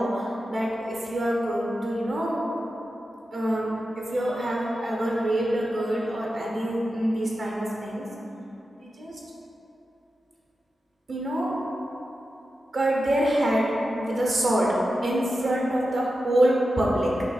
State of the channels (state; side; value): normal; both; correlation 0.91